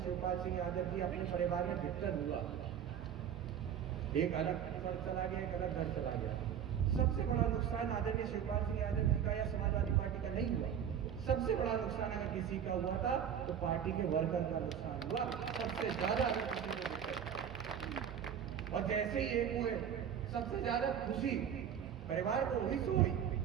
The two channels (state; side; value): quieter; left; 8.7 dB